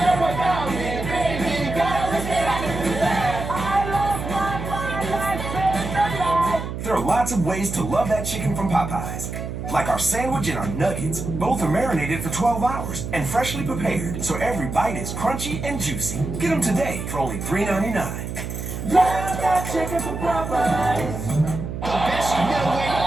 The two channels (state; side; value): noise; right; hum, 6 dB below the sound